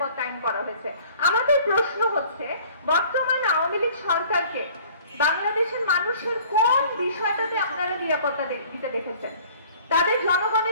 আইন করা হয়েছে। আমাদের প্রশ্ন হচ্ছে, বর্তমান আওয়ামী লীগ সরকারকে বাংলাদেশের মানুষের কোন বিষয়টাতে আপনারা নিরাপত্তা দিতে দেখেছেন? তাদের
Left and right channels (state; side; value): inverted; both; correlation -0.51